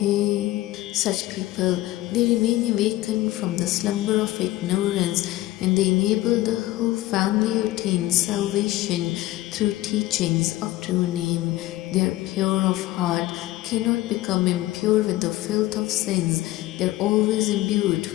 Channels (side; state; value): right; quieter; 16.8 dB